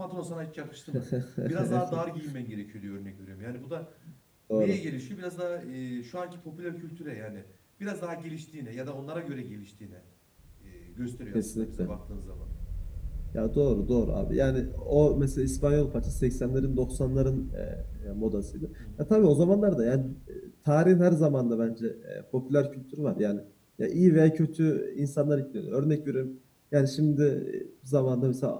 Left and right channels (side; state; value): both; identical; correlation 1.00